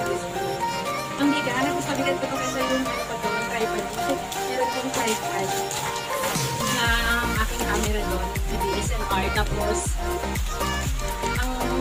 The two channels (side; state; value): both; identical; correlation 1.00